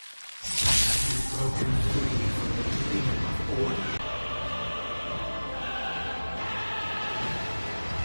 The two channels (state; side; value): inverted; both; correlation -1.00